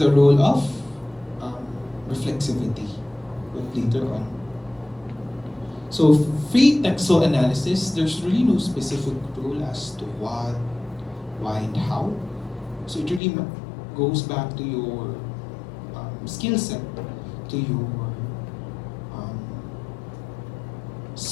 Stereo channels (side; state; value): right; drops out; at 13.2 s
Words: role of reflexivity later on. So free textual analysis, there's really no specific rule as to what, why, and how. So it really goes back to your skill set. to your